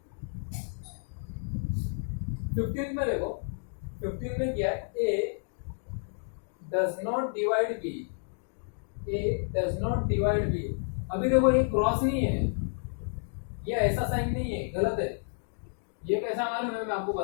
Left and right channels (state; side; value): silent; right; digital silence